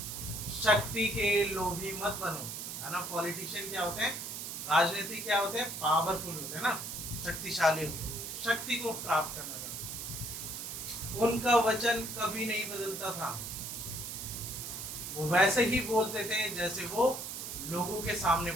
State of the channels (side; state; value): right; noise; hiss, 6 dB below the sound